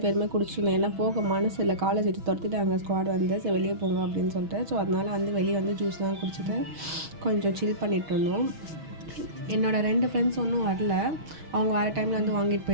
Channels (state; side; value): late; left; 6.2 ms